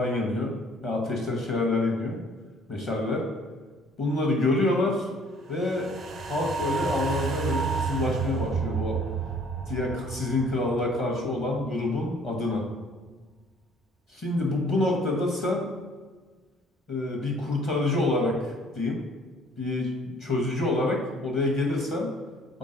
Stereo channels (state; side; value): normal; both; correlation 0.57